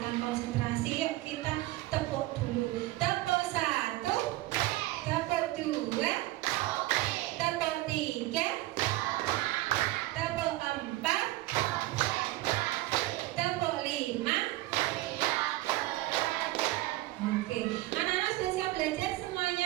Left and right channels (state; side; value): quieter; left; 18.2 dB